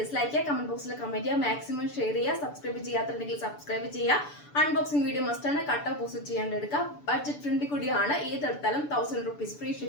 ചെയ്യുക, കമന്റ് ബോക്സിൽ കമന്റ് ചെയ്യുക, മാക്സിമം ഷെയർ ചെയ്യുക. സബ്സ്ക്രൈബ് ചെയ്യാത്തുണ്ടെങ്കിൽ സബ്സ്ക്രൈബ് ചെയ്യുക. അൺബോക്സിംഗ് വീഡിയോ മസ്റ്റ് ആണ്. കട്ട് ഓപ്പോസിറ്റ് ചെയ്യാണ്ട് എടുക്കുക. ബഡ്ജറ്റ് ഫ്രണ്ട്ലി കൂടിയാണ്. ഏതെടുത്താലും 1000 rupees ഫ്രീ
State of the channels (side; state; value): right; late; 6.9 ms